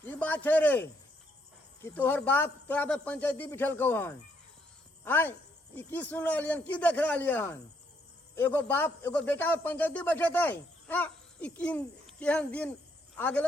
की बात है रे कि तोहर बाप तोरा पे पंचायती बिठल कौ हन आय ई की सुन रहा की देख रहा हन एगो बाप एगो बेटा पे पंचायती बैठे थे हाँ ई केहन दिन आ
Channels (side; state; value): both; normal; correlation 0.72